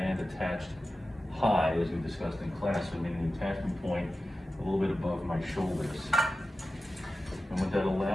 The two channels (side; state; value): both; normal; correlation 0.94